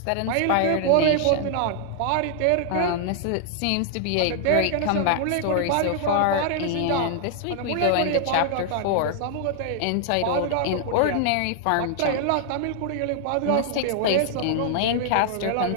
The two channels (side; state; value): both; different; correlation 0.00